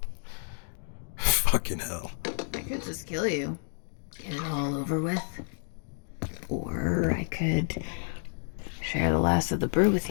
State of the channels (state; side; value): silent; right; digital silence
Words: Fucking hell. I could just kill you. Get it all over with. Or I could share the last of the brew with